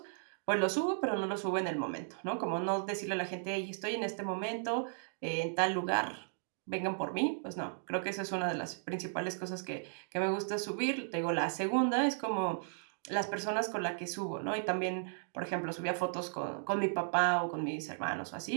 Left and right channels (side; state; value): left; silent; digital silence